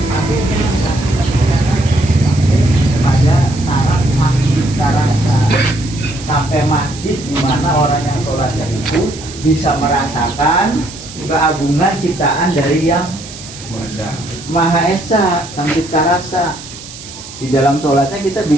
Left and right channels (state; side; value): noise; right; hiss, 15 dB below the sound